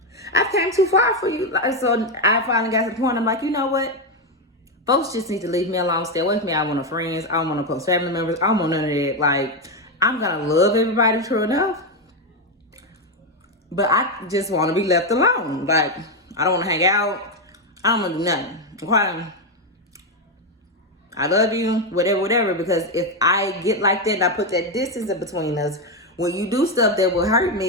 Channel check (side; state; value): both; normal; correlation 0.07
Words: I've came too far for you. So I finally got to the point, I'm like, you know what? Folks just need to leave me alone, stay away from me. I don't want no friends. I don't want no close family members. I don't want none of that. Like, I'm gonna love everybody, true enough, but I just want to be left alone. Like, I don't want to hang out. I don't want to do nothing. Okay? I love you, whatever, because if I get like that and I put that distance in between us, when you do stuff that will hurt